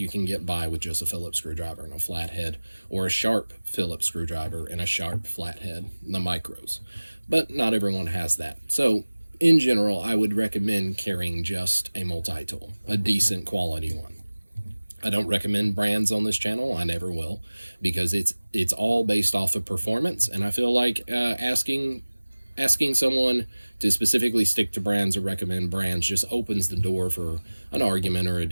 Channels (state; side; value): inverted; both; correlation -1.00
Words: can get by with just a Phillips screwdriver and a flathead, or a sharp Phillips screwdriver and a sharp flathead, the micros. But not everyone has that. So in general, I would recommend carrying just a multi-tool, a decent quality one. I don't recommend brands on this channel. I never will, because it's all based off of performance, and I feel like asking someone to specifically stick to brands or recommend brands just opens the door for an argument or a